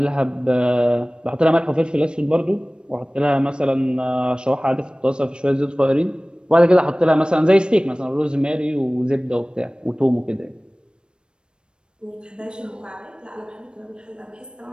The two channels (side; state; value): left; late; 0.053 ms